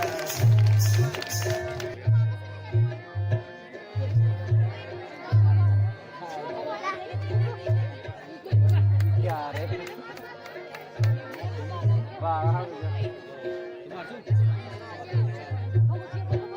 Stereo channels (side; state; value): both; identical; correlation 1.00